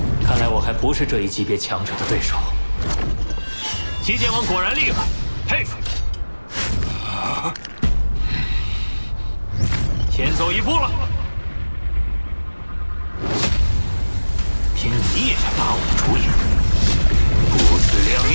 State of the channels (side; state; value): both; inverted; correlation -1.00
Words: 看来我还不是这一级别强者的对手。七剑王果然厉害，佩服。先走一步了，凭你也想打我的主意，不自量